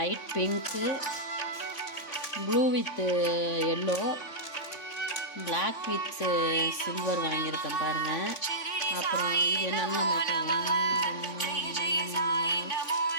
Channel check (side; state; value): right; late; 3.5 ms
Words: pink, blue with yellow, black with silver வாங்கியிருக்கேன் பாருங்கள். அப்புறம் இது என்னென்னு